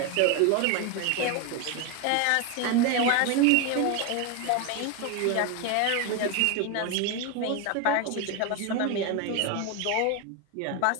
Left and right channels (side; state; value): both; different; correlation 0.02